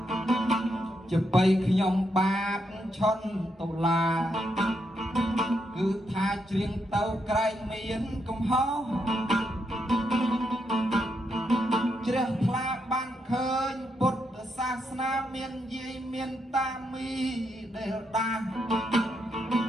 ជាបីខ្ញុំបាបឈន់តុលាគឺថាច្រៀងទៅក្រែងមានកំហុសជ្រះថ្លាបានឃើញពុទ្ធសាសនាមានយាយមានតាមីដែលដាស់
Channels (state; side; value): normal; both; correlation 0.80